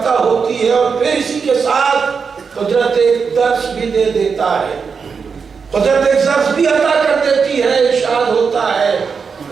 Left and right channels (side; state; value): left; quieter; 5.7 dB